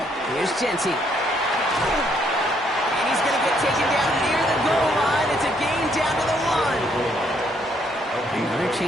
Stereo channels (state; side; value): normal; both; correlation 0.70